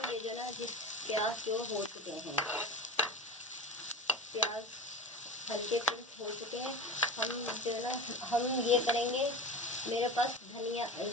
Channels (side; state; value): both; normal; correlation 0.30